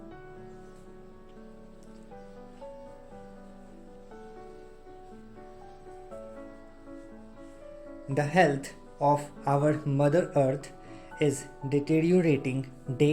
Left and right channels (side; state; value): both; identical; correlation 1.00